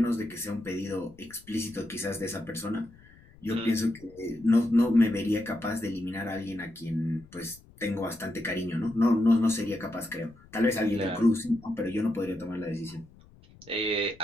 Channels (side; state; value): left; noise; rumble, 25 dB below the sound